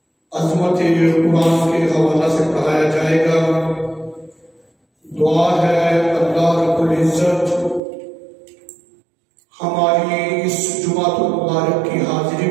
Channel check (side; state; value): left; drops out; at 7.8 s